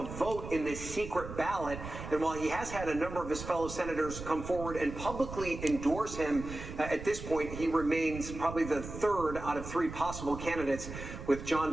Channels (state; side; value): noise; right; rumble, 10 dB below the sound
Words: vote in this secret ballot. And while he has had a number of his fellow senators come forward and publicly endorse him, at this point, he remains probably the third out of three possible candidates, with